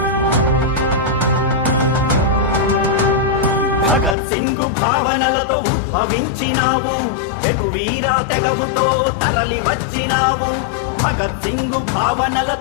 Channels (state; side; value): drops out; right; at 4.2 s